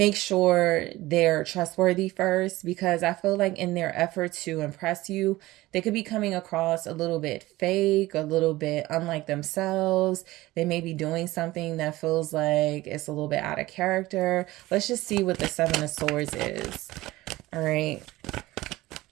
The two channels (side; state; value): left; quieter; 18.2 dB